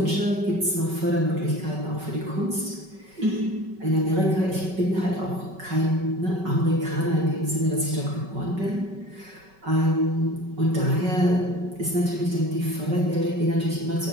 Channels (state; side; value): late; left; 5.3 ms